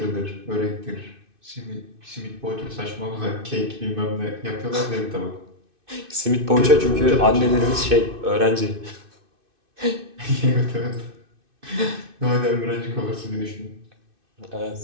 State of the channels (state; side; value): late; left; 2.6 ms